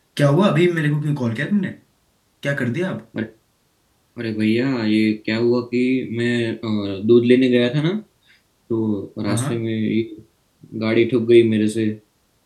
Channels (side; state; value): both; identical; correlation 1.00